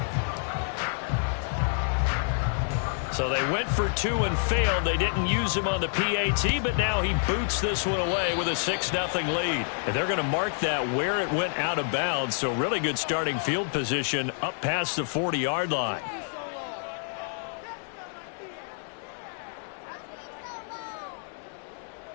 So they went for 2 and failed. They didn't use him on the PAT, but now he boots this one away with a 6-0 lead. And they're going to mark that where it went out of bounds. So really good starting field position up past the 40-yard line.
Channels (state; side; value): silent; right; digital silence